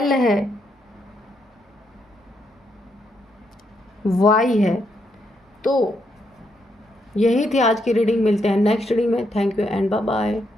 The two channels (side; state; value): both; normal; correlation 0.78